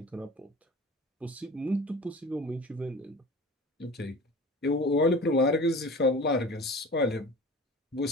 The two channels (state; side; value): normal; both; correlation 0.38